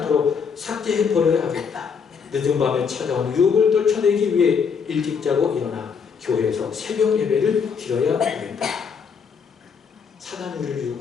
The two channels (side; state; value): right; quieter; 6.2 dB